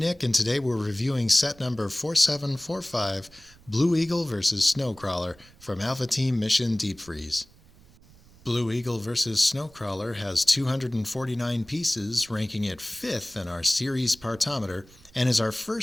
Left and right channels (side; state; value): right; noise; rumble, 26 dB below the sound